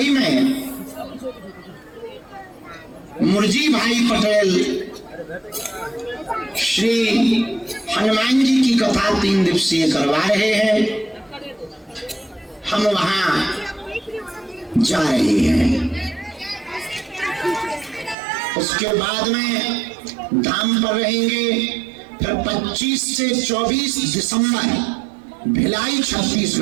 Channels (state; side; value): drops out; left; at 18.2 s